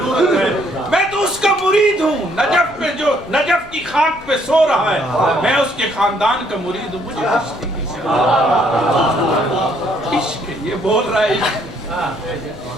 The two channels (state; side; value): noise; left; rumble, 24 dB below the sound